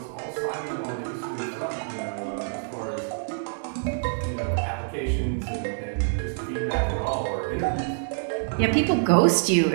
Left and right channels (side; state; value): left; silent; digital silence